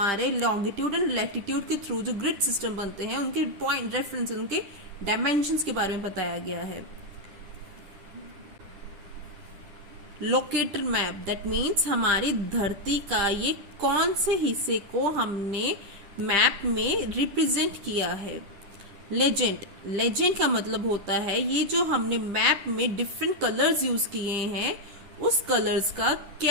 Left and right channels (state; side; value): late; left; 10 ms